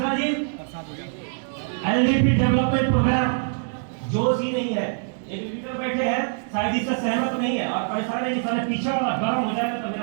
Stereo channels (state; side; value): silent; left; digital silence